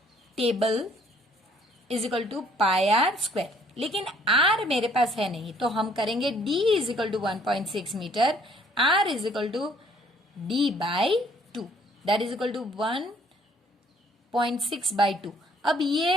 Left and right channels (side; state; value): both; normal; correlation 0.61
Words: table is equal to pi r square, लेकिन आर मेरे पास है नहीं तो हम करेंगे D is equal to 1.6 metre, r is equal to D by 2 that is equal to 1.6 by 2। अब